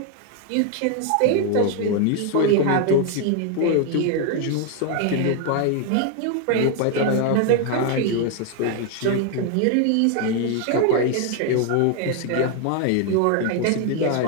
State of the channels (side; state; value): both; different; correlation 0.01